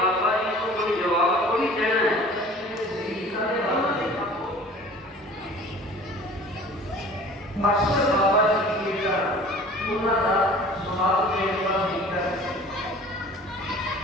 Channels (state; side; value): normal; both; correlation 0.46